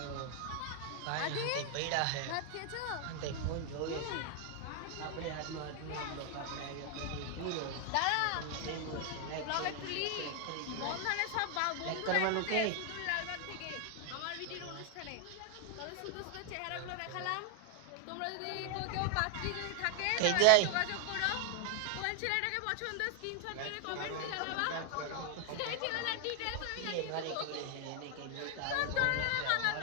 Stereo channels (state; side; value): different; both; correlation 0.00